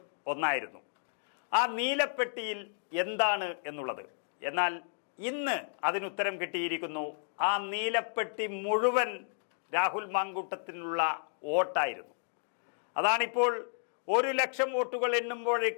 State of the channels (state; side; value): silent; right; digital silence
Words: ഒന്നായിരുന്നു, ആ നീലപ്പെട്ടിയിൽ എന്താണ് എന്നുള്ളത്. എന്നാൽ ഇന്ന് അതിനുത്തരം കിട്ടിയിരിക്കുന്നു. ആ നീലപ്പെട്ടി മുഴുവൻ രാഹുൽ മാങ്കൂട്ടത്തിനുള്ള വോട്ടായിരുന്നു. അതാണിപ്പോൾ 1,00,000 വോട്ടുകൾ